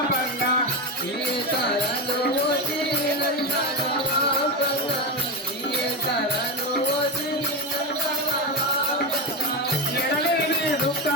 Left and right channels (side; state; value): both; normal; correlation 0.15